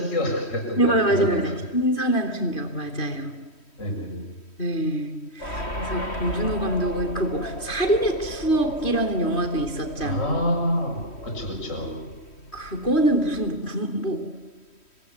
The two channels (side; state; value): right; late; 3.1 ms